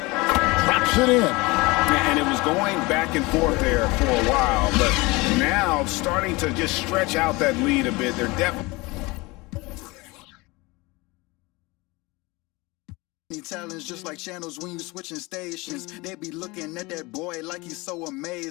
it in. And it was going back and forth there for a while, but now starting to just stretch out that lead a bit. They're definitely talents just like channels when you switching stations. They be looking at that boy like he's so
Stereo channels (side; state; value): right; quieter; 23.6 dB